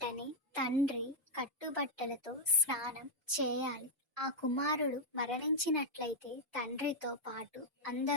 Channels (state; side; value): normal; both; correlation -0.02